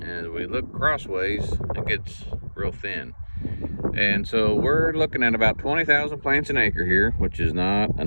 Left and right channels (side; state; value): both; inverted; correlation -1.00